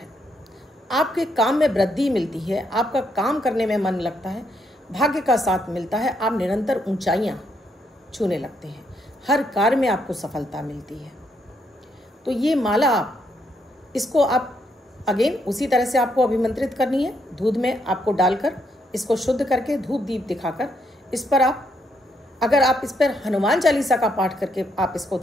आपके काम में वृद्धि मिलती है, आपका काम करने में मन लगता है, भाग्य का साथ मिलता है, आप निरंतर ऊंचाइयां छूने लगते हैं, हर कार्य में आपको सफलता मिलती है। तो ये माला इसको आप अगेन उसी तरह से आपको अभिमंत्रित करनी है। दूध में आपको डालकर इसको शुद्ध करके धूप दीप दिखाकर इस पर आप अगर आप इस पर हनुमान चालीसा का पाठ करके आप इसको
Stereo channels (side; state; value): both; normal; correlation 0.75